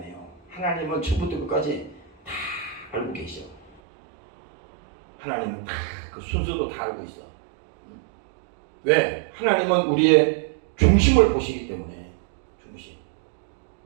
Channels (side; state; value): left; drops out; at 3.8 s